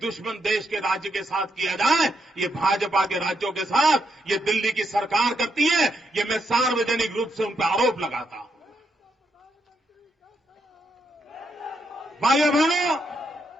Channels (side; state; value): both; normal; correlation 0.80